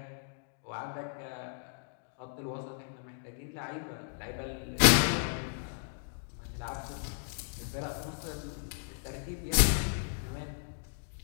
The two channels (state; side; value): silent; right; digital silence